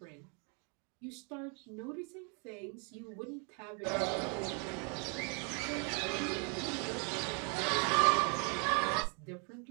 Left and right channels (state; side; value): quieter; left; 36.9 dB